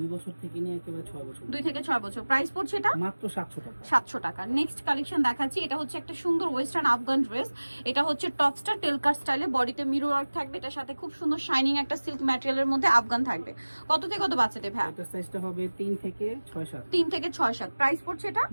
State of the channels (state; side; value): inverted; both; correlation -1.00